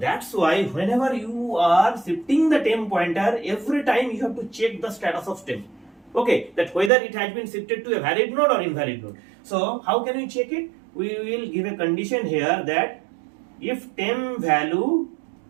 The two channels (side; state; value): left; drops out; at 6.9 s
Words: why whenever you are shifting the temp pointer, every time you have to check the status of temp. Okay, that whether it has been shifted to a valid node or invalid node. So how can we check it? We will give a condition here that if temp value